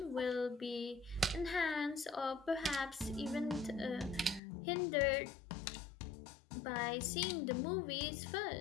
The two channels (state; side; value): drops out; right; at 4.4 s